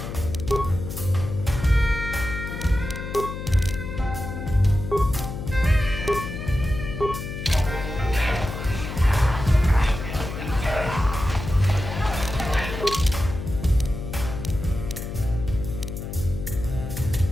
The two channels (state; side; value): noise; left; hum, 7 dB below the sound